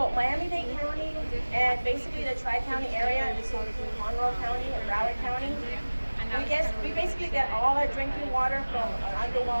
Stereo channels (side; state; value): both; inverted; correlation -1.00